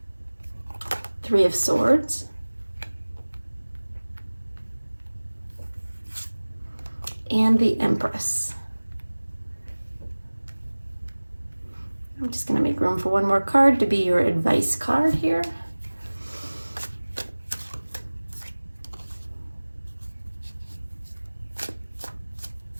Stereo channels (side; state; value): both; inverted; correlation -1.00